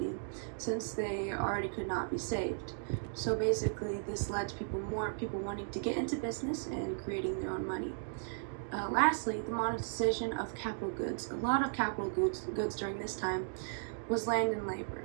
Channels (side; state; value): left; silent; digital silence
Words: since they already could not be saved. So basically, this led to more people wanting to get into business and creating their own money. Lastly, the monetization of capital goods. A lot of capital goods during this time was land and